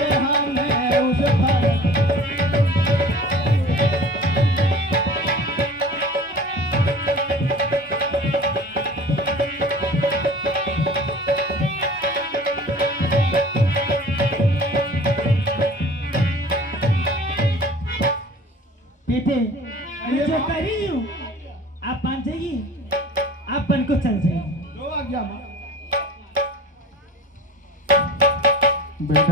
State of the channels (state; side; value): normal; both; correlation 0.43